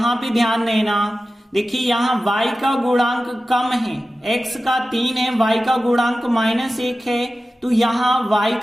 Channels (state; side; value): normal; both; correlation 0.94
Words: पे ध्यान देना, देखिए यहाँ y का गुणांक कम है, x का 3 है, y का गुणांक -1 है, तो यहाँ y